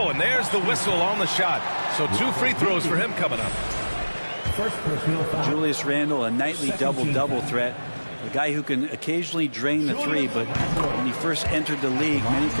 and there's the whistle on the shot. So 2 free throws for him coming up. Julius Randle, a nightly double-double threat. A guy who can occasionally drain the three, but when he first entered the league, many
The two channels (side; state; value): both; inverted; correlation -1.00